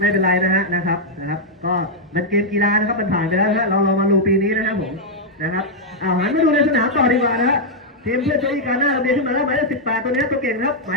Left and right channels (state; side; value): normal; both; correlation -0.04